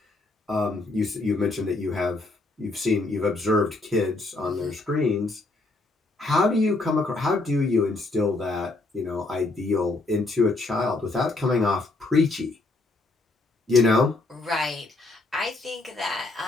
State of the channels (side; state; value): right; quieter; 3.2 dB